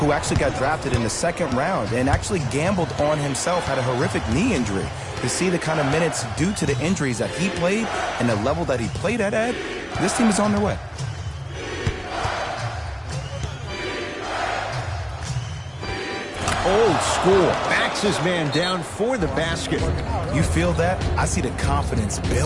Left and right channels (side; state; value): both; identical; correlation 1.00